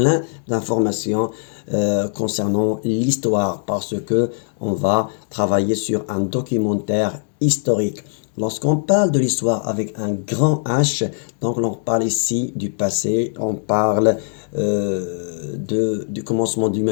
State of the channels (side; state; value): right; silent; digital silence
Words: d'informations concernant l'histoire parce que on va travailler sur un documentaire historique. Lorsqu'on parle de l'histoire avec un grand H, donc on parle ici du passé, on parle du commencement de